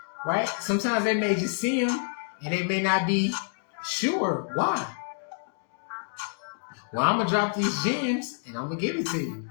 right? Sometimes they may just see him and they may not be sure why. Well, I'm going to drop these gems and I'm going to give it to you.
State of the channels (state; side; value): silent; right; 59 dB below the other